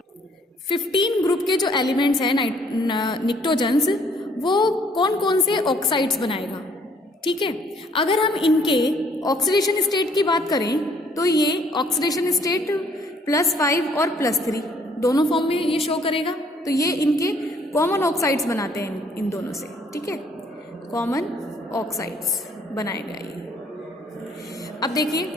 15 ग्रुप के जो एलिमेंट्स हैं निक्टोजन्स, वो कौन कौन से ऑक्साइड्स बनाएगा? ठीक है, अगर हम इनके ऑक्सीडेशन स्टेट की बात करें तो ये ऑक्सीडेशन स्टेट +5 और +3 दोनों फॉर्म में ये शो करेगा। तो ये इनके कॉमन ऑक्साइड्स बनाते हैं इन दोनों से। ठीक है, कॉमन ऑक्साइड्स बनाएगा ये। अब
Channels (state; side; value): normal; both; correlation 0.63